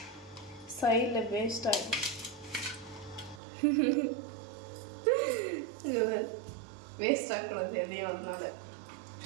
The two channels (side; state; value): left; drops out; at 3.4 s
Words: சைடில் வேஸ்ட் ஆகிடும். வேஸ்ட் ஆகக்கூடாது எதையும். அதனால